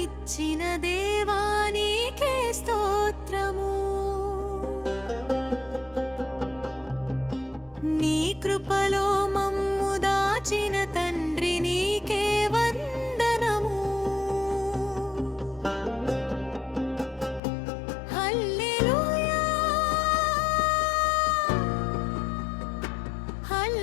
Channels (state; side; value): drops out; right; at 17.4 s